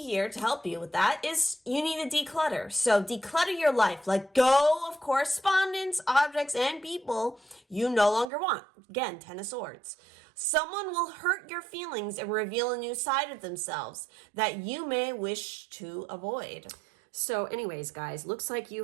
here to help you with that is you need to declutter. So declutter your life. Let go of correspondence, objects, and people you no longer want. Again, Ten of Swords. Someone will hurt your feelings and reveal a new side of themselves that you may wish to avoid. So anyways, guys, looks like you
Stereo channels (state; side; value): drops out; left; at 8.3 s